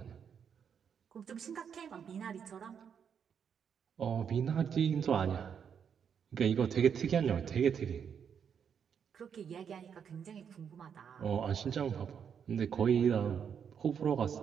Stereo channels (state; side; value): quieter; left; 7.5 dB